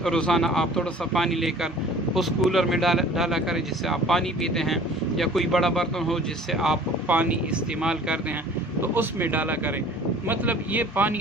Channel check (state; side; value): normal; both; correlation 0.48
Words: روزانہ آپ تھوڑا سا پانی لے کر اس کولر میں ڈالا کریں جس سے آپ پانی پیتے ہیں، یا کوئی بڑا برتن ہو جس سے آپ پانی استعمال کرتے ہیں تو اس میں ڈالا کریں، مطلب یہ پانی